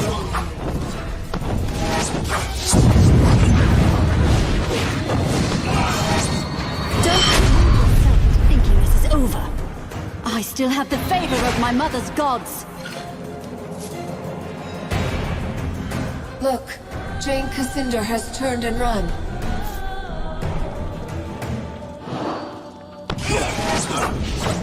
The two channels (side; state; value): both; identical; correlation 1.00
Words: Thinking this is over. I still have the favor of my mother's gods. Look, Jane Cascinder has turned and run.